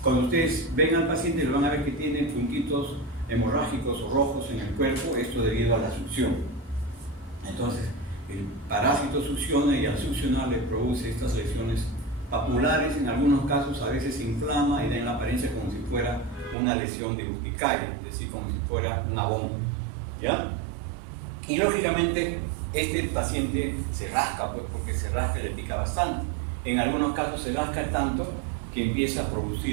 cuando ustedes ven al paciente, lo van a ver que tiene puntitos hemorrágicos o rojos en el cuerpo, esto debido a la succión. Entonces, el parásito succiona y al succionar le produce estas lesiones papulares, en algunos casos a veces se inflama y da en la apariencia como si fuera una lesión de urticaria, es decir, como si fuera una bomba, ¿ya? Y lógicamente este paciente se rasca, pues, porque se rasca y le pica bastante. En algunos casos se rasca tanto que empieza a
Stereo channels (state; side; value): drops out; left; at 16.6 s